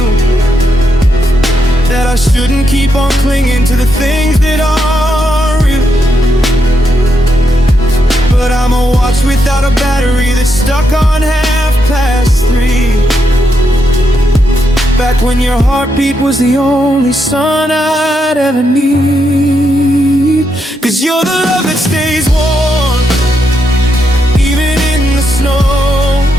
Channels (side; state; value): both; normal; correlation 0.81